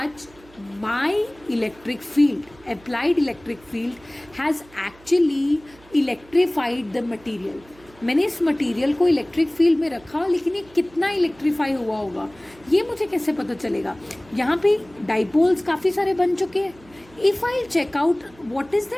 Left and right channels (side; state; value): right; noise; hum, 26 dB below the sound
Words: my electric field, applied electric field, has actually electrified the material. मैंने इस material को electric field में रखा, लेकिन ये कितना electrify हुआ होगा ये मुझे कैसे पता चलेगा? यहाँ पे डाइपोल्स काफ़ी सारे बन चुके हैं. If I check out what is